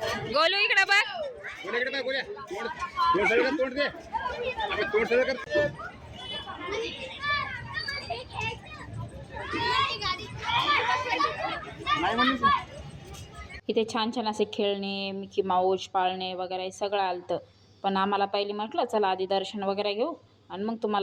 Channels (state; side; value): identical; both; correlation 1.00